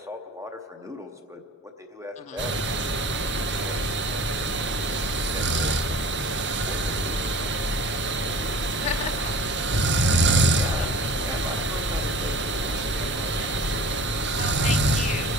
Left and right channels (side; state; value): both; normal; correlation 0.44